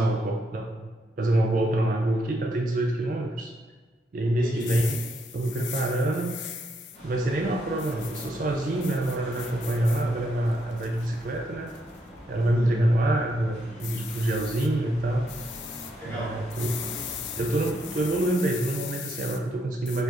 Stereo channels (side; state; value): both; normal; correlation 0.77